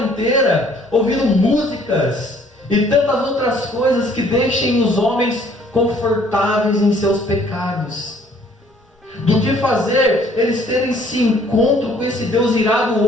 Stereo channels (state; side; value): normal; both; correlation 0.60